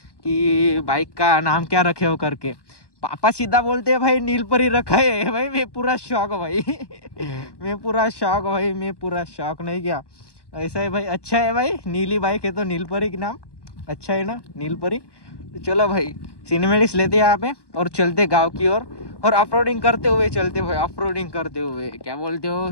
बाइक का नाम क्या रखे हो करके, पापा सीधा बोलते हैं भाई नीलपरी रखा है भाई. मैं पूरा शौक भाई मैं पूरा शौक भाई, मैं पूरा शौक नहीं क्या. ऐसा है भाई, अच्छा है भाई. नीली बाइक है तो नीलपरी के नाम अच्छा है ना, नीलपरी. तो चलो भाई सिनेमेटिक्स लेते हैं यहाँ पे और चलते गांव की ओर, और ऑफरोडिंग करते हुए चलते भाई, ऑफरोडिंग करते हुए. क्या बोलते हो,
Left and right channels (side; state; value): right; late; 1.1 ms